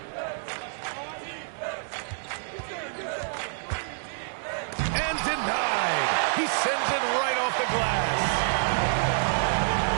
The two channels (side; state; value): left; silent; digital silence